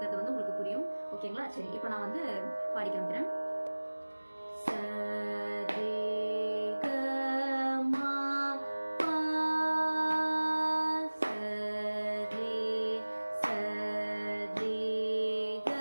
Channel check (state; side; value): inverted; both; correlation -1.00